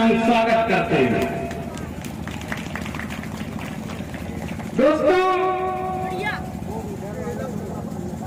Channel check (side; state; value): both; identical; correlation 1.00